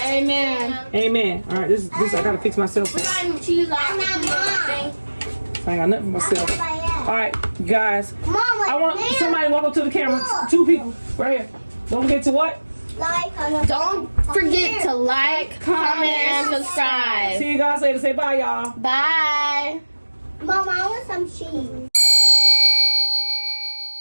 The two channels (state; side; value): inverted; both; correlation -1.00